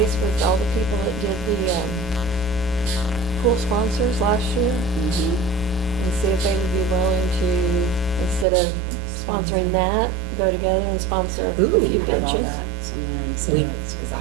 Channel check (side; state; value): left; drops out; at 8.5 s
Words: with all the people that did the, pool sponsors last year, Mm-hmm. and see if they would be willing to, instead of sponsoring that, go together and sponsor a Ooh. few benches. Because